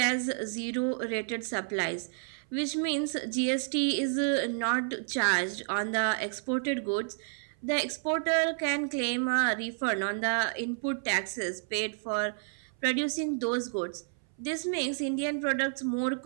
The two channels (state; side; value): silent; left; 57 dB below the other